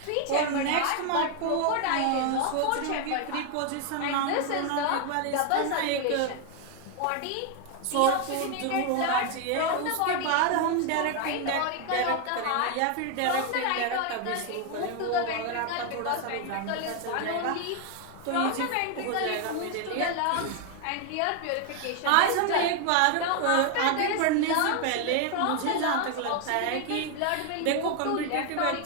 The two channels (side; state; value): both; different; correlation 0.01